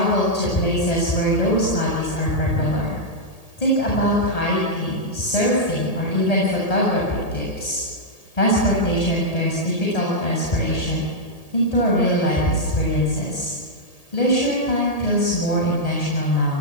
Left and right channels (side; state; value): right; late; 1.8 ms